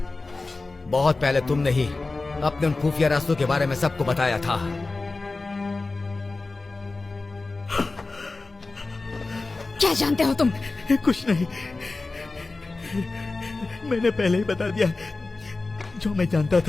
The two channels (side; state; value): right; quieter; 3.5 dB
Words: बहुत पहले तुमने ही अपने उन खुफिया रास्तों के बारे में सबको बताया था। क्या जानते हो तुम? कुछ नहीं, मैंने पहले ही बता दिया जो मैं जानता